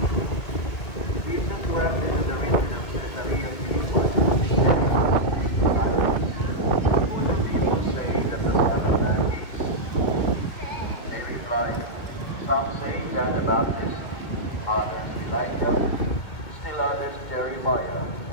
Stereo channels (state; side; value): late; right; 2.2 ms